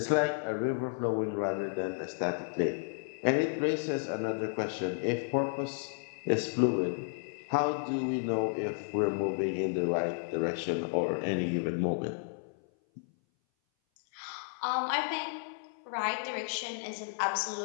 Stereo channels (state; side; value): silent; right; 56 dB below the other